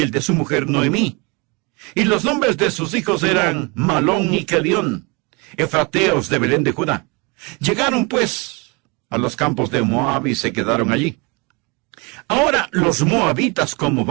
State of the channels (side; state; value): left; quieter; 28.3 dB